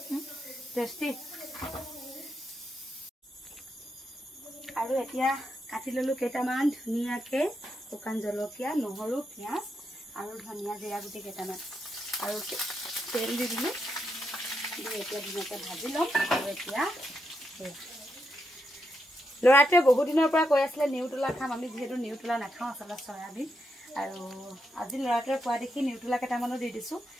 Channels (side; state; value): both; normal; correlation 0.82